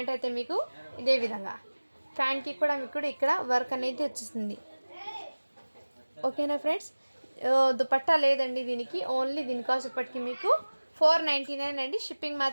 అయితే మీకు ఇదే విధంగా, ప్యాంట్కి కూడా మీకు ఇక్కడ వర్క్ అనేది వచ్చేస్తుంది. ఓకేనా ఫ్రెండ్స్, దుపట్టా లేదండి దీనికి. ఓన్లీ దీని కాస్ట్ ఇప్పటికి మీకు 499 అండి. షిప్పింగ్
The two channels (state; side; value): inverted; both; correlation -1.00